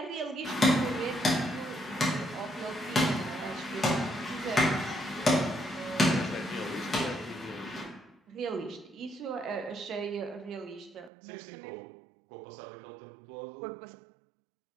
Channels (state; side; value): drops out; left; at 11.1 s